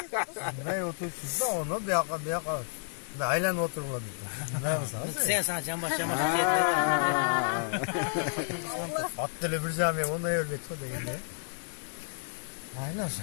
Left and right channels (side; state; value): right; silent; digital silence